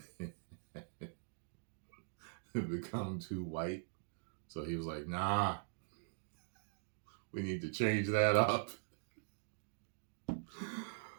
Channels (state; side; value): silent; left; digital silence